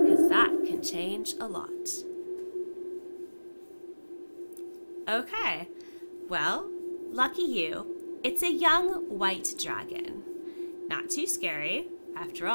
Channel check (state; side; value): inverted; both; correlation -1.00